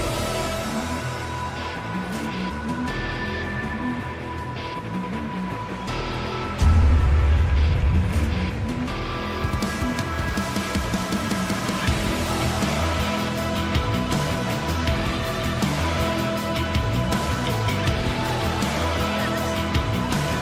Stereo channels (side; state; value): both; identical; correlation 1.00